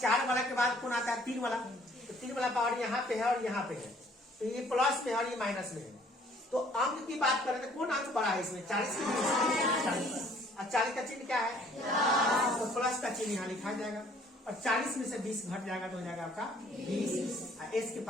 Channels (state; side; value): normal; both; correlation 0.58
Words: वाला के बाद कौन आता है? 3 वाला। तो 3 वाला पावर यहाँ पे है और यहाँ पे है, तो ये प्लस में है और ये माइनस में है। तो अंक की बात करें तो कौन अंक बड़ा है इसमें? 40 की 40। और 40 का चिन्ह क्या है? तो प्लस का चिन्ह यहाँ लिखा जाएगा और 40 में से 20 घट जाएगा तो हो जाएगा आपका 20, एस के